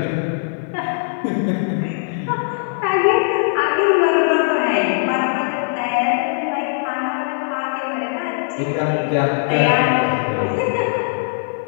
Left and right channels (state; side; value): silent; right; digital silence